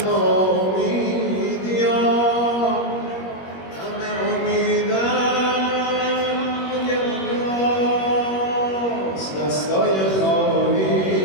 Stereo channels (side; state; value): right; late; 21 ms